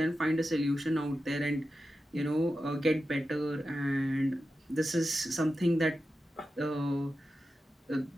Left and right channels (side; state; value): both; normal; correlation 0.91